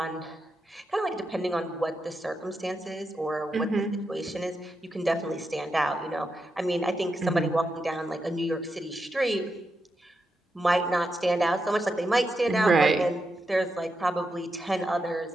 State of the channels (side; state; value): both; normal; correlation 0.86